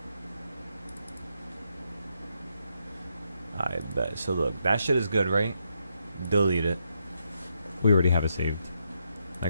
I bet. So look, that shit is good, right? Delete it. We already have it saved.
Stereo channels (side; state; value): both; inverted; correlation -0.80